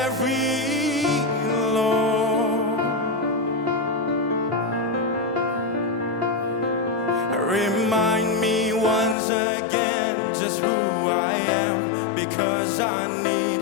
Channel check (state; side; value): drops out; right; at 9.2 s